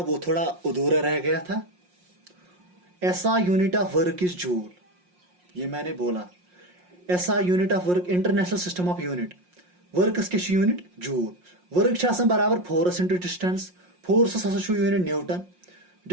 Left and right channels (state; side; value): late; left; 5.6 ms